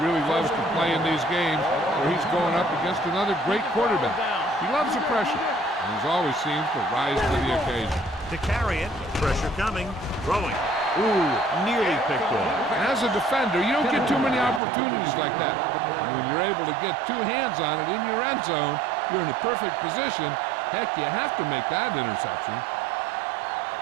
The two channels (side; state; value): left; drops out; at 14.6 s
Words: really loves to play in these games where he's going up against another great quarterback. He loves the pressure, and he always seems to rise to the occasion. To carry it, pressure coming, throwing. Ooh, nearly picked off. As a defender, you don't get too many opportunities like that. And when you're able to get 2 hands on it in your end zone, you're in the perfect position. Heck, you have to make that interception.